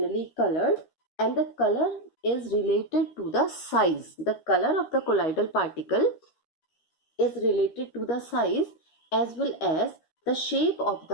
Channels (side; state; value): right; late; 13 ms